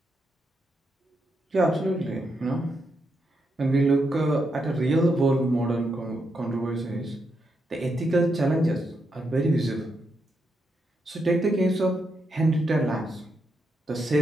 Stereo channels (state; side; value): normal; both; correlation 0.82